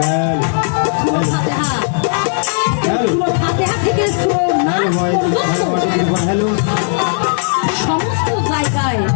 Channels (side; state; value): right; silent; digital silence